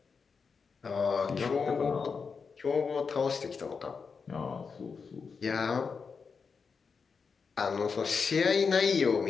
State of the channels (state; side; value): quieter; right; 5.4 dB